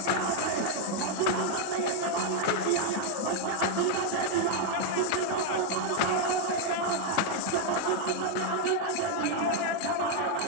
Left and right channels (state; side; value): different; both; correlation 0.00